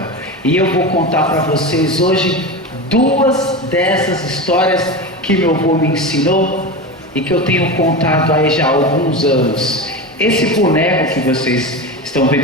E eu vou contar para vocês hoje duas dessas histórias que meu avô me ensinou e que eu tenho contado aí já há alguns anos. Esse boneco que vocês estão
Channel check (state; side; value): normal; both; correlation 0.24